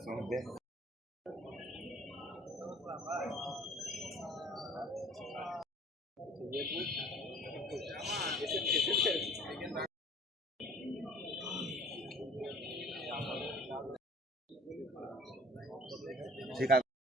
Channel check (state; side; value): normal; both; correlation 0.50